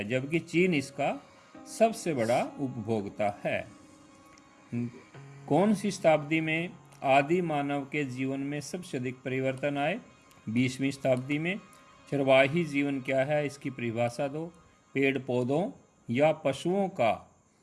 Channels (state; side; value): identical; both; correlation 1.00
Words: जबकि चीन इसका सबसे बड़ा उपभोक्ता है। कौन सी शताब्दी में आदि मानव के जीवन में सबसे अधिक परिवर्तन आए? 20वीं शताब्दी में। चरवाही जीवन क्या है? इसकी परिभाषा दो। पेड़ पौधों या पशुओं का